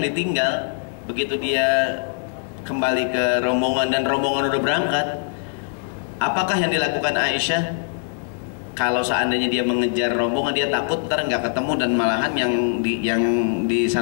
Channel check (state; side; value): silent; right; digital silence